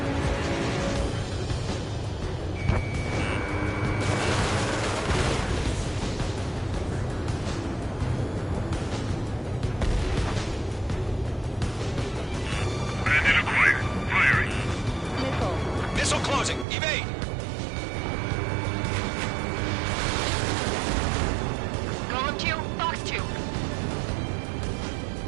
Bandit acquired. Firing. Missile closing. Evade! Golem 2, Fox 2.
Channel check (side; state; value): left; drops out; at 16.7 s